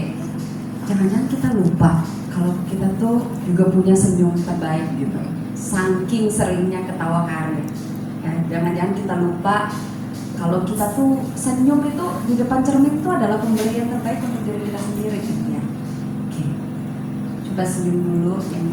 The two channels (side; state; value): both; identical; correlation 1.00